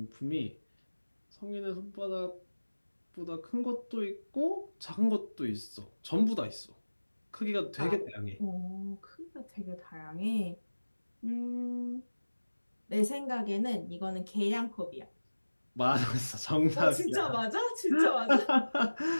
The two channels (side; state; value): both; inverted; correlation -1.00